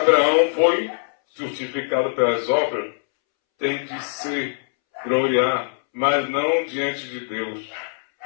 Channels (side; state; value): right; silent; 64 dB below the other